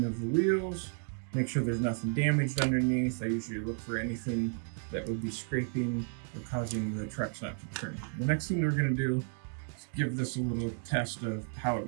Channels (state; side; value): silent; left; 56 dB below the other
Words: of the wheels, make sure there's nothing damaged underneath. I usually look for anything that would be scraping or causing the trucks not to turn. The next thing we're going to do is give this a little test of how it